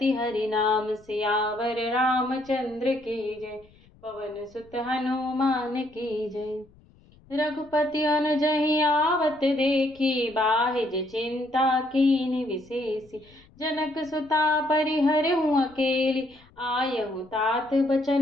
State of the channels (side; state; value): left; noise; rumble, 28 dB below the sound